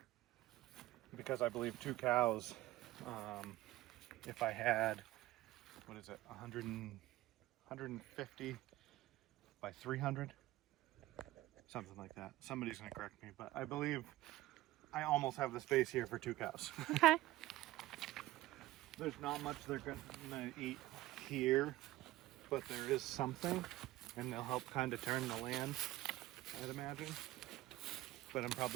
because I believe 2 cows, if I had, what is it, 150 by 300, something like that. Somebody's gonna correct me, but I believe I almost have the space here for 2 cows. Okay. There's not much they're gonna eat here, but there is something, and they'll help kind of turn the land, I'd imagine. But I'm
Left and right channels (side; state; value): left; quieter; 16.7 dB